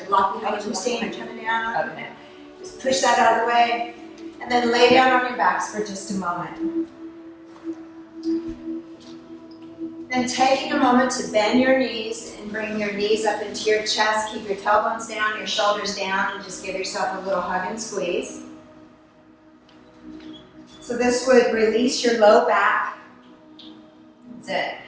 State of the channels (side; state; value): both; identical; correlation 1.00